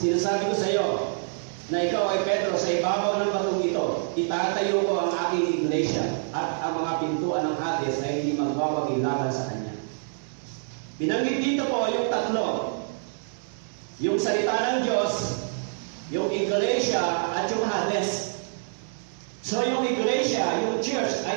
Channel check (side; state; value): left; silent; 61 dB below the other